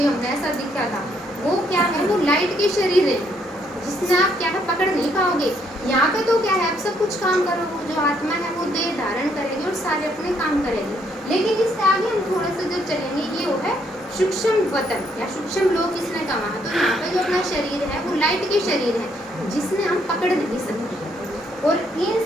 हमने ऐसा दिखा था, वो क्या है, वो लाइट के शरीर है जिसमें आप क्या है पकड़ नहीं पाओगे। यहाँ पे तो क्या है, आप सब कुछ काम करोगे, जो आत्मा है वो देह धारण करेगी और सारे अपने काम करेगी। लेकिन इससे आगे हम थोड़ा सा जब चलेंगे, ये वो है सूक्ष्म वतन या सूक्ष्म लोक इसने कहा। तो यहाँ पे जो अपना शरीर है वो लाइट के शरीर है जिसने हम पकड़ नहीं सकते। और इन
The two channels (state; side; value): normal; both; correlation 0.71